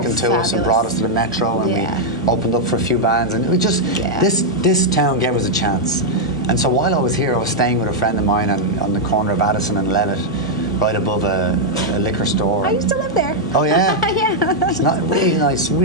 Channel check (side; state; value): both; normal; correlation -0.03